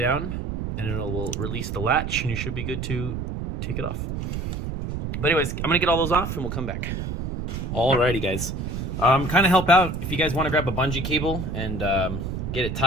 and it will release the latch, and you should be good to take it off. But anyways, I'm gonna get all those off and we'll come back. Alrighty guys, kind of help out if you guys want to grab a bungee cable and get it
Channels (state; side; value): noise; right; rumble, 4 dB below the sound